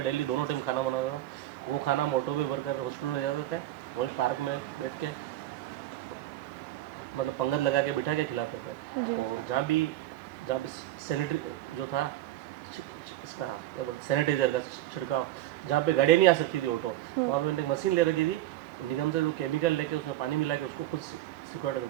दोनों टाइम खाना बनाता था। वो खाना हम ऑटो में भरकर हॉस्पिटल ले जाते थे, वहीं पार्क में बैठ के मतलब पंगत लगा के बिठा के खिलाते थे। और जहाँ भी सैनिटरी जो था, इसका क्या बोलते, सैनिटाइजर का छिड़काव, जहाँ पे गाड़ी नहीं आ सकती थी ऑटो, वहाँ पे मैंने एक मशीन ले रखी थी, निगम से जो केमिकल लेके उसमें पानी मिला के उसको खुद सिक्योरिटी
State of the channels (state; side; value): quieter; left; 14.3 dB